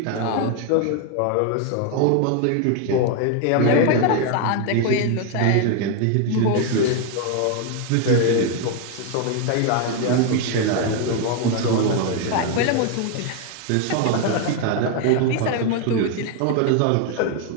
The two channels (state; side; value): different; both; correlation 0.01